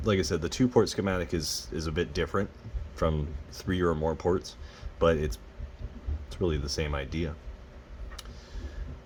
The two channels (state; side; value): identical; both; correlation 1.00